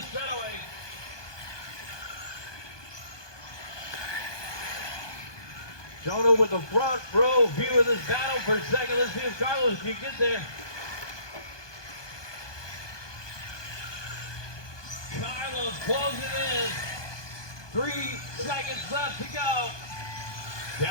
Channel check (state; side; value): late; right; 1.2 ms